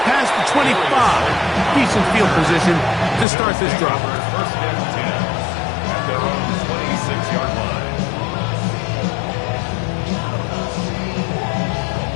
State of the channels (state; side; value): drops out; right; at 3.2 s